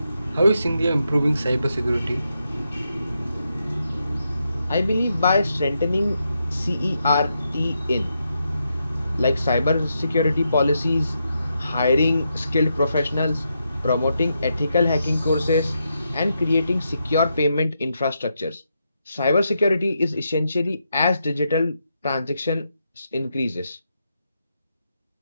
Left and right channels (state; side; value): inverted; both; correlation -0.83